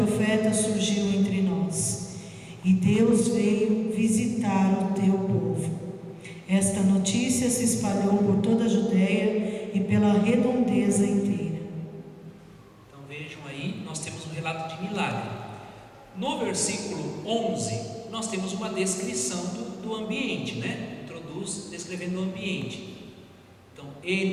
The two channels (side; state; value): both; identical; correlation 1.00